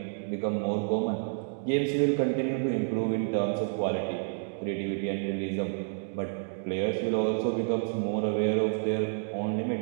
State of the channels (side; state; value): left; silent; digital silence